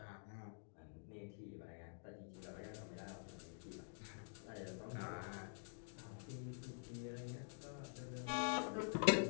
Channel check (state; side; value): silent; right; digital silence